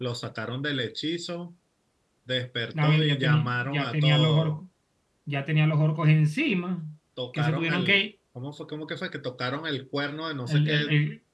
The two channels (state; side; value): identical; both; correlation 1.00